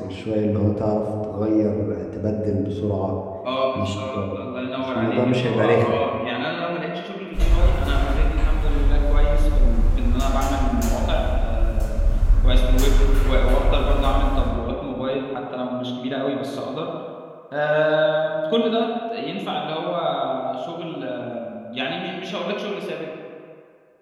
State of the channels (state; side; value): identical; both; correlation 1.00